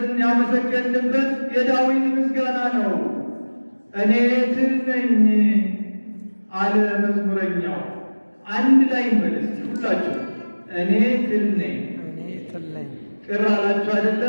ያመሰገንበት የዳዊት ምስጋና ነው። እኔ ትል ነኝ አለ መዝሙረኛው። አንድ ላይ እንበል እስቲ ሁላችሁ፣ እኔ ትል ነኝ። ቅር አላችሁ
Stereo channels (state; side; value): inverted; both; correlation -1.00